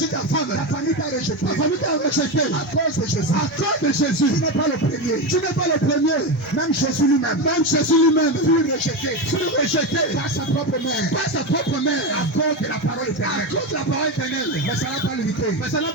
La famille t'a rejeté. À cause de Jésus. Tu n'es pas le premier. Même Jésus lui-même. Fut rejeté par sa propre mère. À cause de la parole éternelle. Mais ça n'a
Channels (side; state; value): both; normal; correlation 0.16